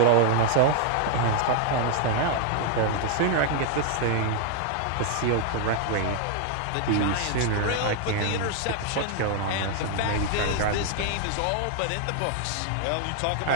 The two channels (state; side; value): different; both; correlation 0.00